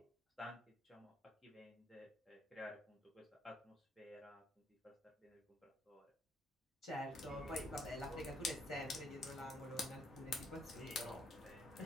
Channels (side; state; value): both; normal; correlation 0.70